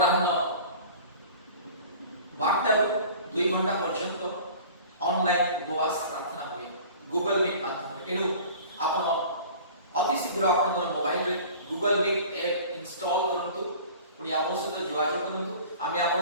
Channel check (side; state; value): both; inverted; correlation -0.43